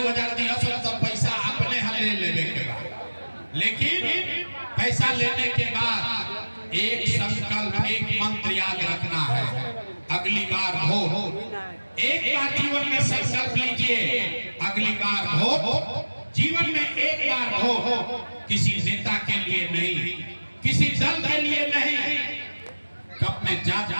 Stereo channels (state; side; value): inverted; both; correlation -1.00